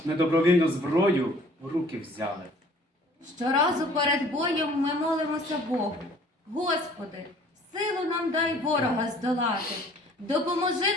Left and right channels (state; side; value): normal; both; correlation 0.54